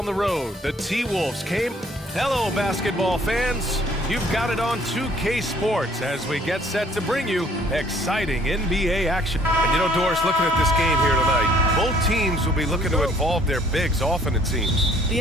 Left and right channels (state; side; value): normal; both; correlation 0.60